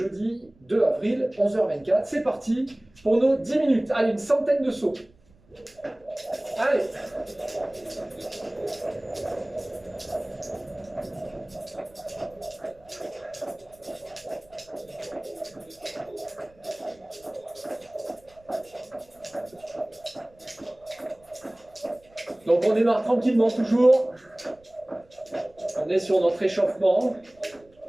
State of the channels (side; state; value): right; noise; rumble, 30 dB below the sound